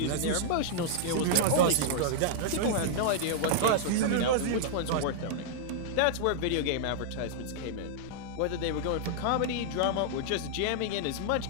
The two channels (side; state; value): both; different; correlation -0.01